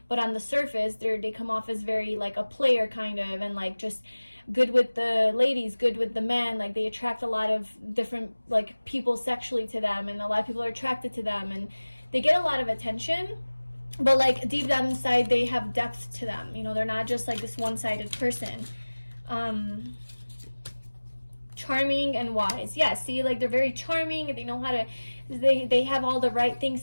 But on the surface, they come off as very like a player kind of, and like just good with the ladies, good with the men. Like they attract a lot of different like people sexually to them, and a lot of people are attracted to them, and they get a lot of attention. But like deep down inside, they have depth to them. You know, they're not just like this one-sided person. Charming and wise. Yeah, see, like they're very charming, and they know how to, they have all the right things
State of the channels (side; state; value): both; inverted; correlation -1.00